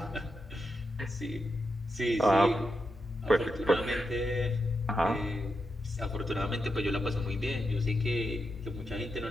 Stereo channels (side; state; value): both; normal; correlation 0.86